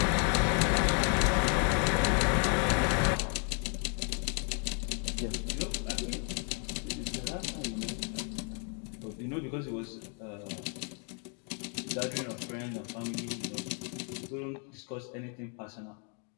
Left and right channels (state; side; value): quieter; right; 34.0 dB